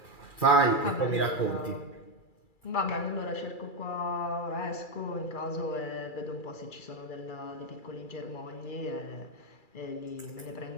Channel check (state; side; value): late; right; 2.3 ms